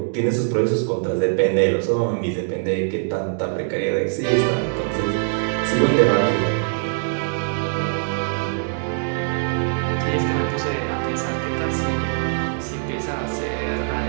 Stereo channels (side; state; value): left; silent; digital silence